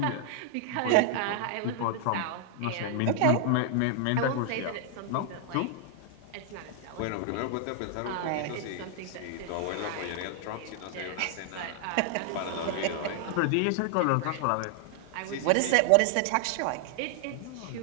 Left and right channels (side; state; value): both; different; correlation 0.00